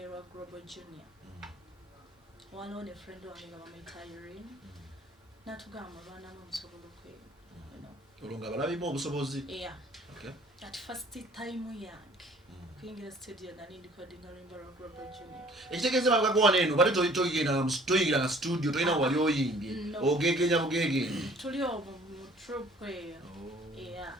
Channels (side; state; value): both; normal; correlation 0.54